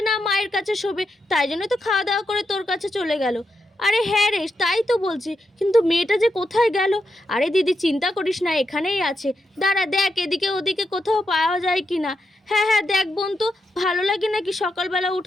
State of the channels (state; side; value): normal; both; correlation 0.84